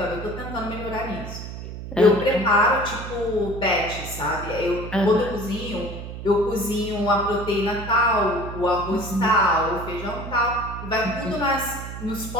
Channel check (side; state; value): right; noise; hum, 9 dB below the sound